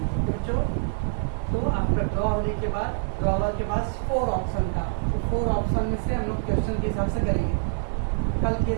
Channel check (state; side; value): silent; left; 59 dB below the other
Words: तो आफ्टर ड्रॉ होने के बाद ड्रॉवर के पास 4 ऑप्शन था, 4 ऑप्शन में से हम लोग क्वेश्चन के हिसाब से करेंगे, कल के